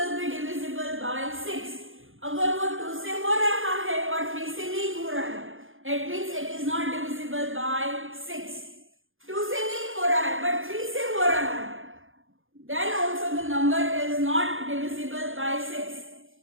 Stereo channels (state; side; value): late; left; 0.59 ms